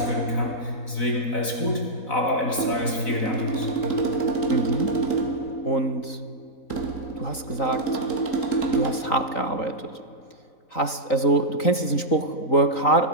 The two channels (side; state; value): right; late; 3.9 ms